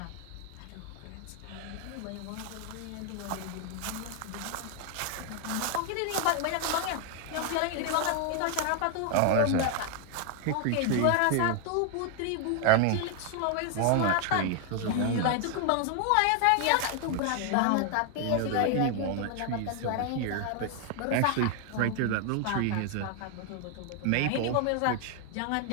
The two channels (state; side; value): different; both; correlation 0.00